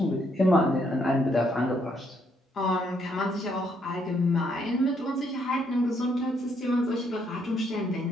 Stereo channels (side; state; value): both; normal; correlation 0.72